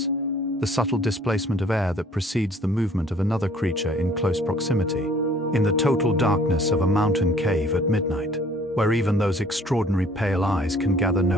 the subtle displacement of air that precedes the movement of another creature in close proximity. In the total darkness of a mountain cave at midnight, where even those extraordinary pale eyes can gather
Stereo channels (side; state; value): both; normal; correlation 0.56